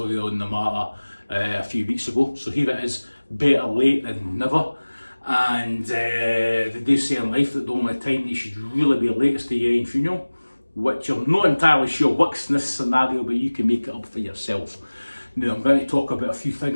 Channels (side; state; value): both; inverted; correlation -1.00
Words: on the matter a few weeks ago. So here it is, better late than never. And they do say in life that the only time you should really be late is to your own funeral, which I'm not entirely sure works in this scenario, but you can make it up for yourself. Now I'm going to talk about a few